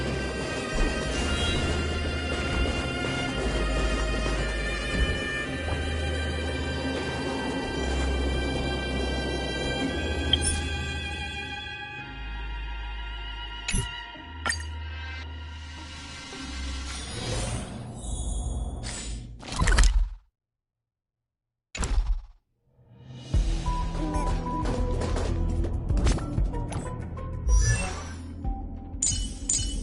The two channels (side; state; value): both; identical; correlation 1.00